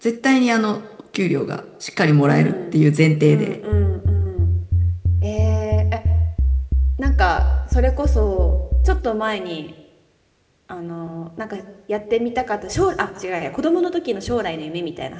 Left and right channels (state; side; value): identical; both; correlation 1.00